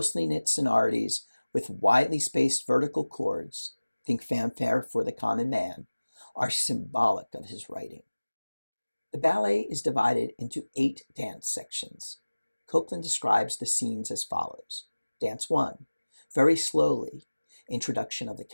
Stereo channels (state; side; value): inverted; both; correlation -1.00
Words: knit sonorities with widely spaced vertical chords, think fanfare for the common man, are symbolic of his writing. The ballet is divided into 8 dance sections. Copland describes the scenes as follows. Dance 1, very slowly, introduction of the